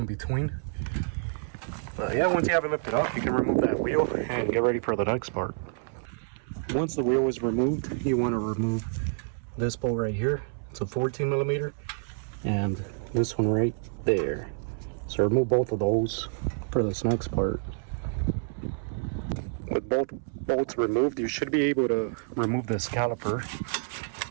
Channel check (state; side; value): silent; left; 59 dB below the other